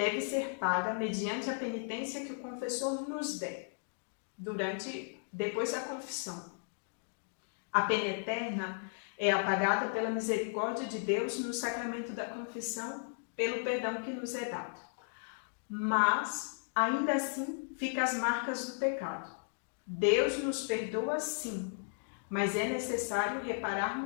ser paga mediante a penitência que o confessor nos der, depois da confissão. A pena eterna é apagada pela misericórdia de Deus no sacramento da confissão, pelo perdão que nos é dado. Mas, ainda assim, ficam as marcas do pecado. Deus nos perdoa sim, mas é necessário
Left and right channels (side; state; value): right; silent; digital silence